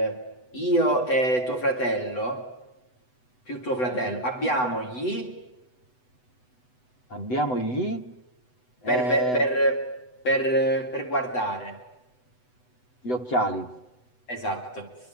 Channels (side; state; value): right; late; 8.0 ms